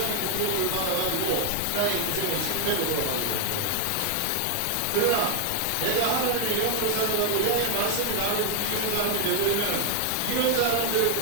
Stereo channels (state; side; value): different; both; correlation 0.00